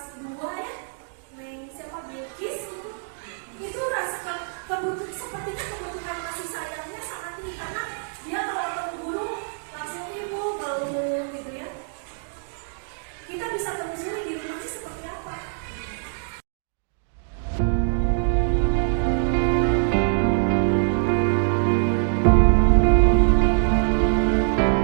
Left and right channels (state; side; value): silent; left; digital silence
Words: 2 ya, siapa Bilkis itu rasa sepertinya kebutuhan kasih sayangnya sangat tinggi karena dia kalau ketemu guru langsung ibu belum gitu ya. Kita bisa telusuri di rumahnya seperti apa.